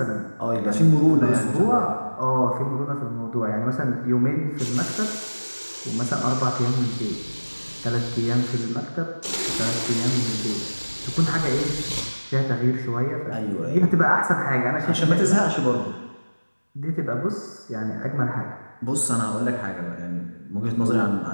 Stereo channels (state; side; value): inverted; both; correlation -1.00